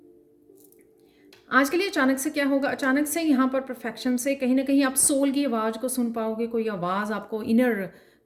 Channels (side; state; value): both; identical; correlation 1.00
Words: आज के लिए अचानक से क्या होगा, अचानक से यहाँ पर परफेक्शन से कहीं ना कहीं आप सोल की आवाज़ को सुन पाओगे। कोई आवाज़ आपको, इनर